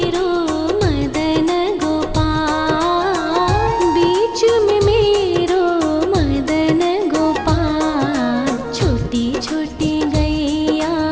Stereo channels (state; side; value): identical; both; correlation 1.00